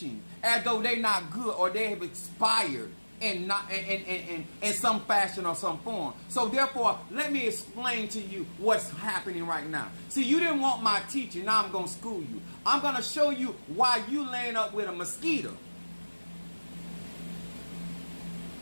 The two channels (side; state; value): both; inverted; correlation -1.00